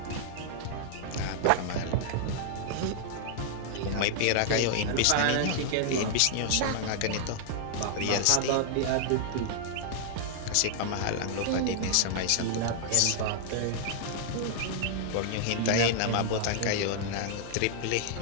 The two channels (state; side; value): different; both; correlation -0.01